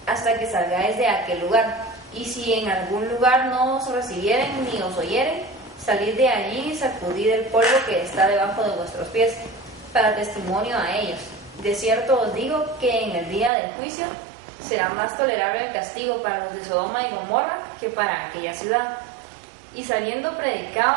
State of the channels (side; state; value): left; drops out; at 13.5 s